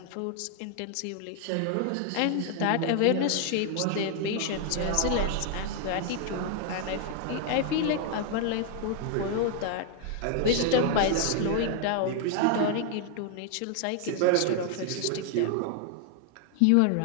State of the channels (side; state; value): both; different; correlation 0.00